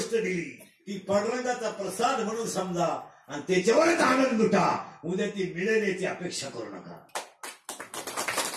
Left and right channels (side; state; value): both; identical; correlation 1.00